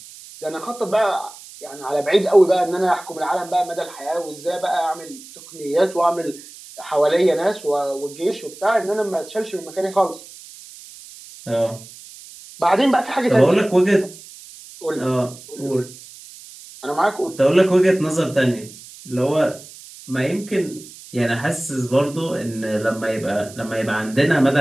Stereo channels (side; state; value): right; noise; hiss, 18 dB below the sound